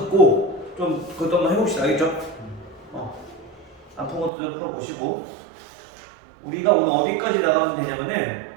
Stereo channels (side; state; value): left; drops out; at 4.3 s